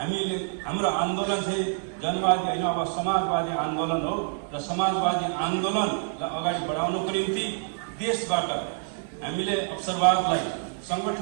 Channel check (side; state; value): left; silent; digital silence